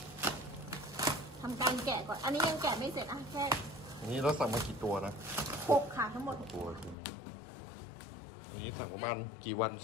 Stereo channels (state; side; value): drops out; right; at 7.0 s